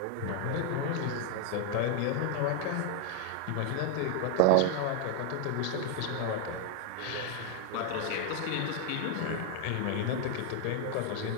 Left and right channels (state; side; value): different; both; correlation 0.01